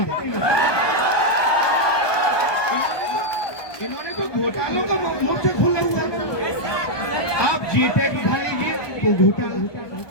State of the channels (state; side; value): late; right; 1.2 ms